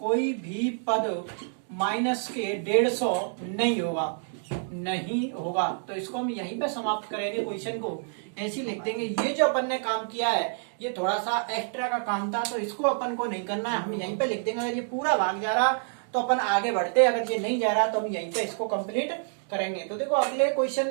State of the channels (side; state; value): left; silent; 60 dB below the other